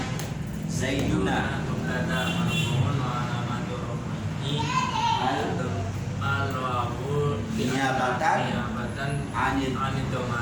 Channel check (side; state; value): both; identical; correlation 1.00